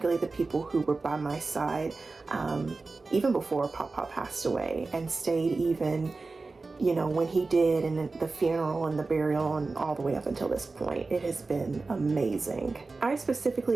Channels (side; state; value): left; quieter; 3.8 dB